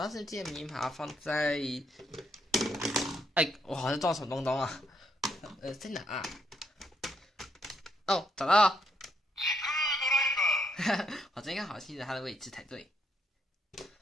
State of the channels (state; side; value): normal; both; correlation 0.74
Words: 时记得明把它放在，我好像撞什么东东啊？在哪啊？哦，找到了。我这应该好记得它的位置才对。